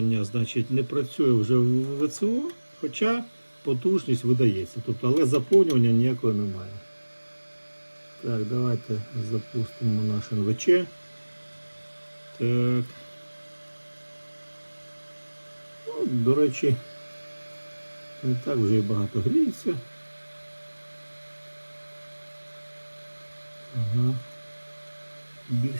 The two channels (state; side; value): inverted; both; correlation -1.00